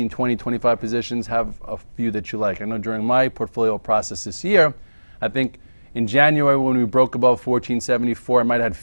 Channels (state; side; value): inverted; both; correlation -1.00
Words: 20, 25 positions. Have a few that you like. I know during my portfolio process this year, I think in January when we broke above 1474, I might have had